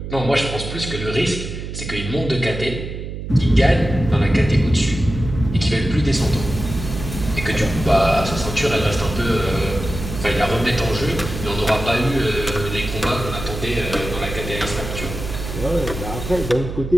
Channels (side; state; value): right; noise; hum, 7 dB below the sound